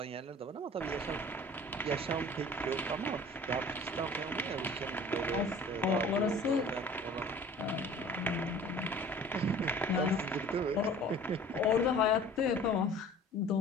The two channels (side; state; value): both; normal; correlation 0.46